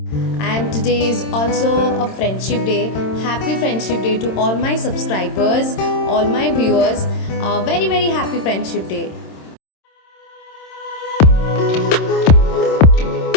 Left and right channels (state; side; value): late; right; 26 ms